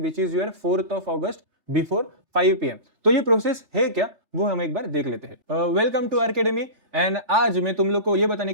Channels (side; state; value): left; late; 3.4 ms